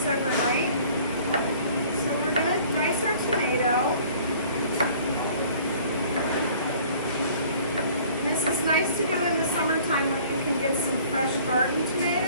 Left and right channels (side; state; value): both; inverted; correlation -0.53